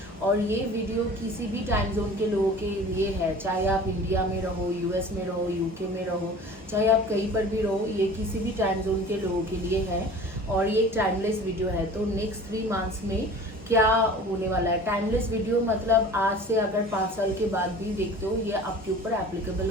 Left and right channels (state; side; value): normal; both; correlation 0.42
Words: और ये वीडियो किसी भी टाइम जोन के लोगों के लिए है, चाहे आप इंडिया में रहो, यूएस में रहो, यूके में रहो, चाहे आप कहीं पर भी रहो, ये किसी भी टाइम जोन के लोगों के लिए है। और ये एक टाइमलेस वीडियो है। तो नेक्स्ट 3 मंथ्स में क्या होने वाला है। टाइमलेस वीडियो मतलब आज से अगर 5 साल के बाद भी देखते हो, ये आपके ऊपर एप्लीकेबल